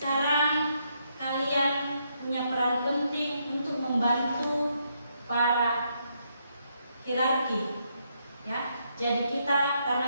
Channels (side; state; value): both; inverted; correlation -0.77